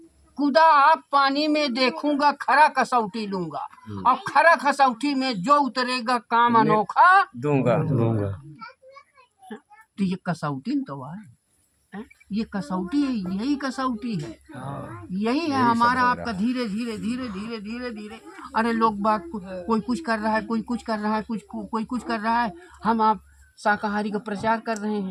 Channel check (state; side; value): identical; both; correlation 1.00